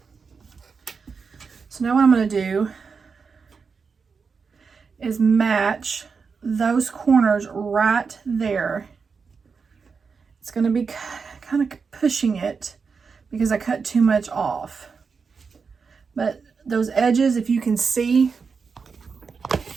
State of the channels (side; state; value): left; quieter; 5.3 dB